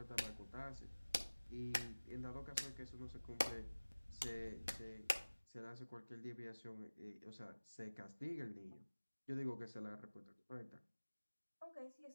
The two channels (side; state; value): both; inverted; correlation -1.00